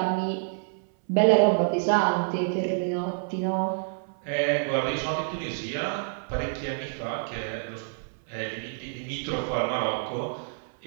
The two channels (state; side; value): silent; left; 57 dB below the other